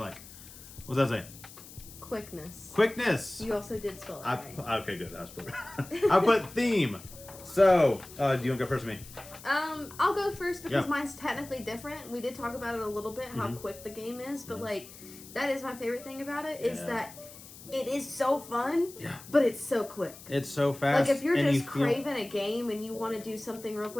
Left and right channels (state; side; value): noise; left; hiss, 17 dB below the sound